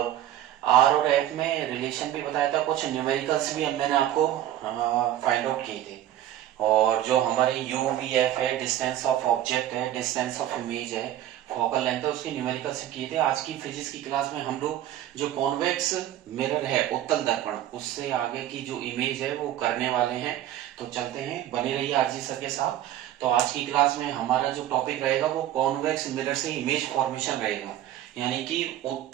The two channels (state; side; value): quieter; left; 12.4 dB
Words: आर और एफ में रिलेशन भी बताया था। कुछ न्यूमेरिकल्स भी मैंने आपको फाइंड आउट किए थे। और जो हमारे यू वी एफ है, डिस्टेंस ऑफ ऑब्जेक्ट है, डिस्टेंस ऑफ इमेज है, फोकल लेंथ है, उसके न्यूमेरिकल से किए थे। आज की फिजिक्स की क्लास में हम लोग जो कॉन्वेक्स मिरर है, उत्तल दर्पण, उससे आगे की जो इमेज है वो करने वाले हैं। तो चलते हैं, बने रहिए आरजी सर के साथ। तो आज की क्लास में हमारा जो टॉपिक रहेगा वो कॉन्वेक्स मिरर से इमेज फॉर्मेशन रहेगा, यानी कि